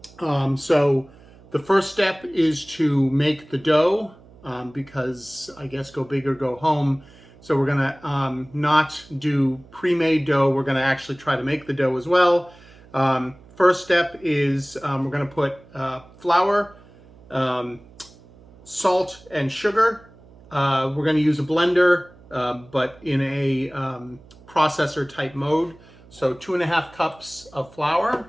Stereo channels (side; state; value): right; noise; hum, 24 dB below the sound